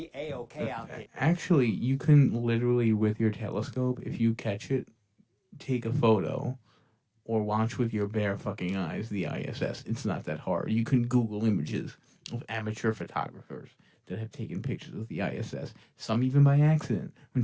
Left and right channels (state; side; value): identical; both; correlation 1.00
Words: A-okay out there. Actually, you can literally, with your telescope, if you catch it, take a photo or watch with your bare fucking eyes the ISS. It's not that hard. You can Google images of amateur photographers that have taken pictures of the ISS. Some even by accident when